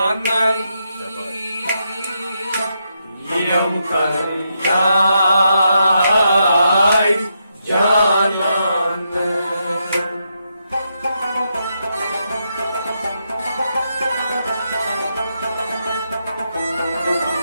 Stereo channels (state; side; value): inverted; both; correlation -0.82